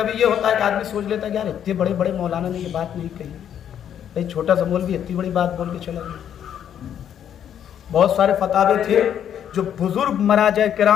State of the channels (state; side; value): quieter; right; 9.5 dB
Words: ये होता है कि आदमी सोच लेता है कि यार इतने बड़े बड़े मौलाना ने ये बात नहीं कही, भाई छोटा सा मौलवी इतनी बड़ी बात बोल के चला गया। बहुत सारे फतावे थे जो बुजुर्ग मराजा